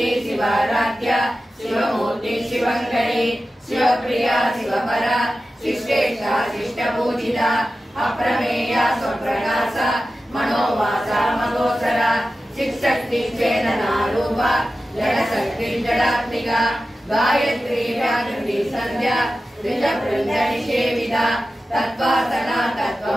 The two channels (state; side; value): normal; both; correlation 0.94